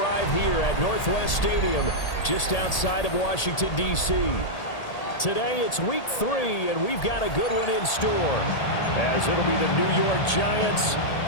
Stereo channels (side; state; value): right; late; 1.8 ms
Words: here at Northwest Stadium, just outside of Washington, D.C. Today, it's week 3, and we've got a good one in store, as it'll be the New York Giants